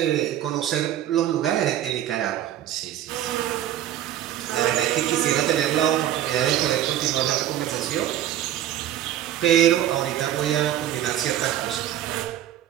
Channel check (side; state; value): left; quieter; 11.8 dB